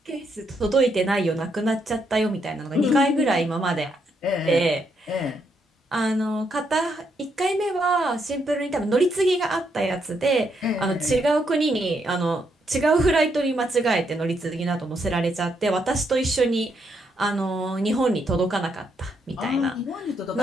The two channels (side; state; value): both; normal; correlation 0.77